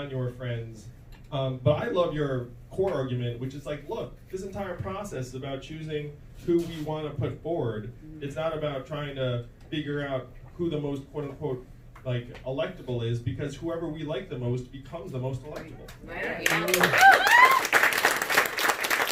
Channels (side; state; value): both; identical; correlation 1.00